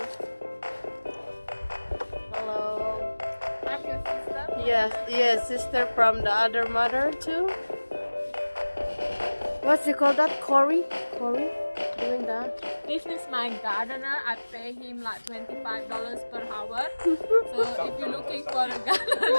Hello. I'm your sister. Yes, yes, sister from the other mother too. What's you call that? Corey? Corey? Doing that? This is my gardener. I pay him like $25 per hour. So if you're looking for a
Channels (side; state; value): both; inverted; correlation -1.00